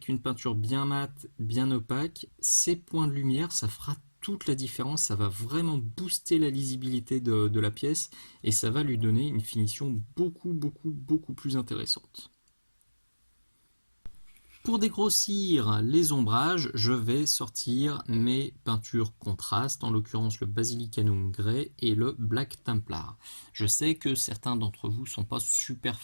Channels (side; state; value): both; inverted; correlation -1.00